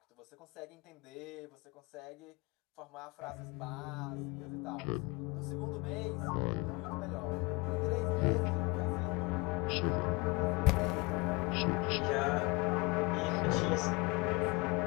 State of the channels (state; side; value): quieter; right; 25.9 dB